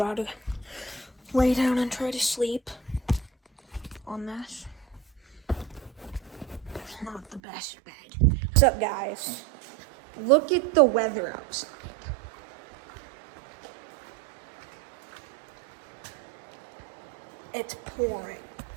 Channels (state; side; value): drops out; left; at 7.4 s